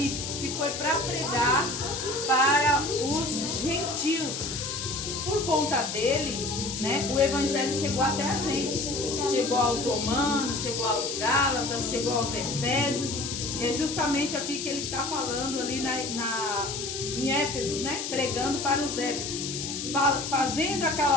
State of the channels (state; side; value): noise; left; hiss, 5 dB below the sound